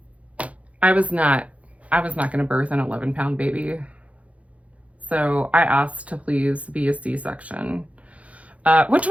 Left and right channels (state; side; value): late; left; 0.065 ms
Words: I was not going to birth an 11-pound baby. So I asked to please be a C-section, which